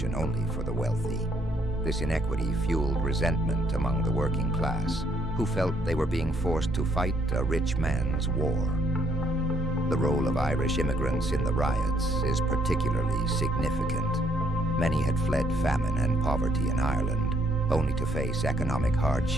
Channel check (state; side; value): normal; both; correlation 0.69